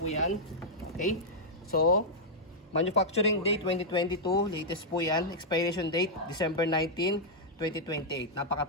yan. Okay? So, manufacturing date 2022, latest po yan. Expiration date December 19, 2028.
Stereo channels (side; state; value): both; normal; correlation -0.06